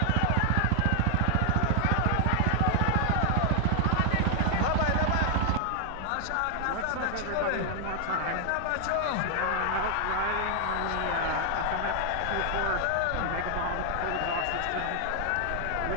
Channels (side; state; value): both; different; correlation 0.00